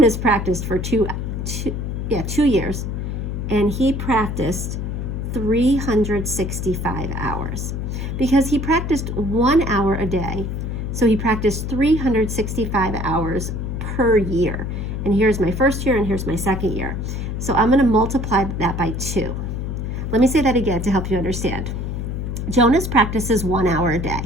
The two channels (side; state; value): left; noise; hum, 4 dB below the sound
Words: practiced for 2 years, and he practiced 365 hours because he practiced 1 hour a day. So he practiced 365 hours per year. And here's my first year, and here's my second year. So I'm going to multiply that by 2. Let me say that again to help you understand. Jonas practices 1 hour a day